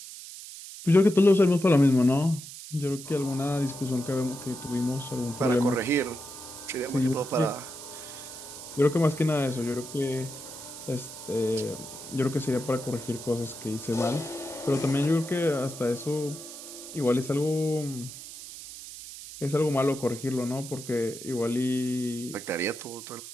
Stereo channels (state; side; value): noise; right; hiss, 13 dB below the sound